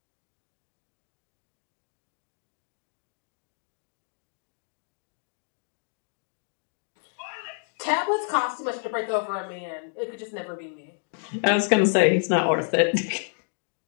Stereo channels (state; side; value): silent; right; digital silence